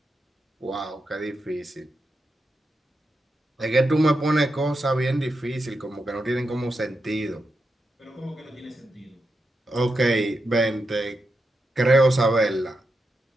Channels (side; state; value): both; normal; correlation 0.87